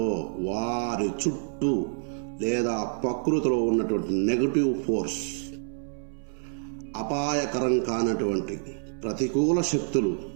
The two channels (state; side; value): silent; left; 60 dB below the other